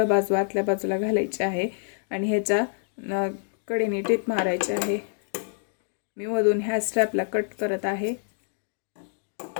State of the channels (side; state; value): right; silent; digital silence